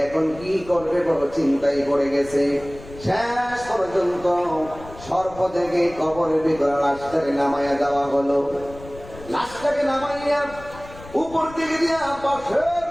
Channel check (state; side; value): noise; left; rumble, 17 dB below the sound